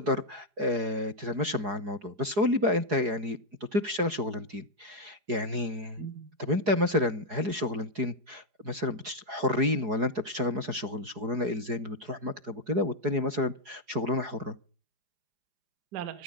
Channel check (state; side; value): late; left; 4.8 ms